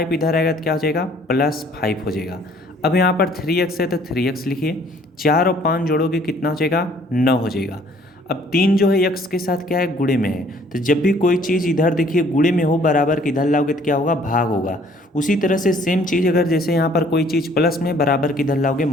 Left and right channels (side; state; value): both; normal; correlation 0.59